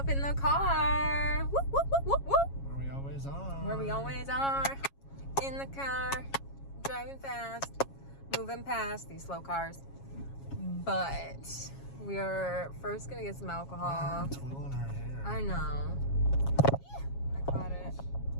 in the car. Whoop, whoop, whoop, whoop, whoop. Where we always are. Where we always are. In the car, driving fast, moving past these slow cars. But we are first gonna get some alcohol. Twirling her hair. I know. I caught it.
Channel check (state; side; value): late; right; 7.3 ms